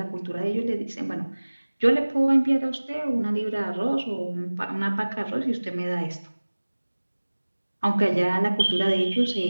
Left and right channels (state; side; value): inverted; both; correlation -1.00